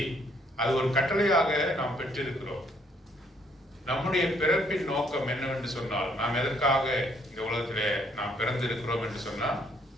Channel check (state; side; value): normal; both; correlation 0.67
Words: அது ஒரு கட்டளையாக நாம் பெற்றிருக்கிறோம். நம்முடைய பிறப்பின் நோக்கம் என்னவென்று சொன்னால், நாம் எதற்காக இந்த உலகத்திலே நாம் பிறந்திருக்கிறோம் என்று சொன்னால்,